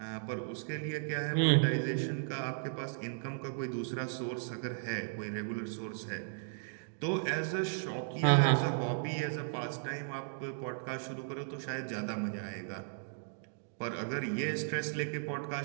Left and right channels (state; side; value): silent; left; digital silence